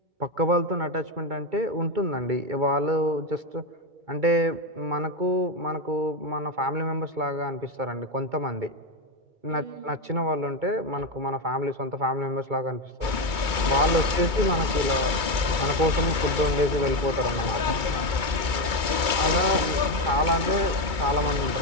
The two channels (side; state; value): left; late; 2.3 ms